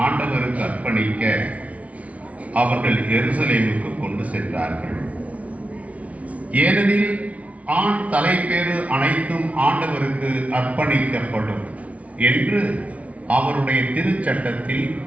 ஆண்டவருக்கு அர்ப்பணிக்க அவர்கள் எருசலேமுக்கு கொண்டு சென்றார்கள். ஏனெனில் ஆண் தலைப்பேறு அனைத்தும் ஆண்டவருக்கு அர்ப்பணிக்கப்படும் என்று அவருடைய திருச்சட்டத்தில்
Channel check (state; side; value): late; left; 0.067 ms